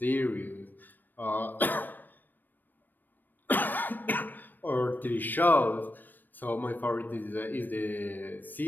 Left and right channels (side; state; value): right; late; 0.090 ms